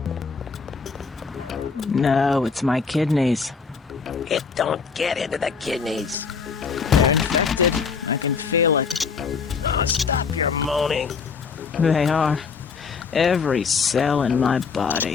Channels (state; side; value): quieter; right; 5.4 dB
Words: No, it's my kidneys. It don't get into the kidneys. Moaning. They are. Every cell in my